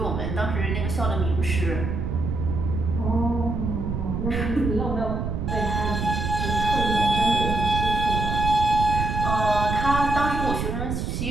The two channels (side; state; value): right; noise; rumble, 2 dB below the sound